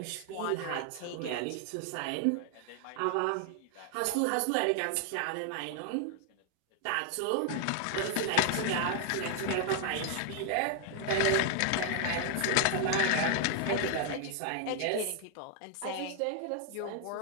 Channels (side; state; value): both; different; correlation 0.00